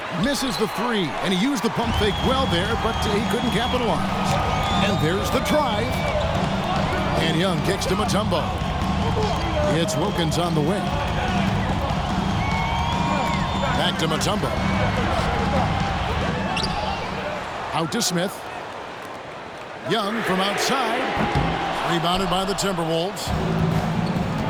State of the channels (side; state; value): both; identical; correlation 1.00